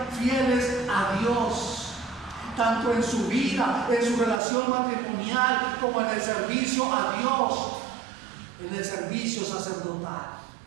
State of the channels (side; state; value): left; drops out; at 4.4 s